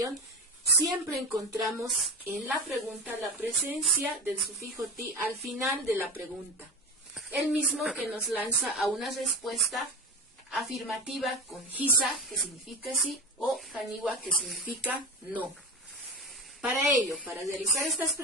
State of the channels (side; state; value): both; normal; correlation 0.28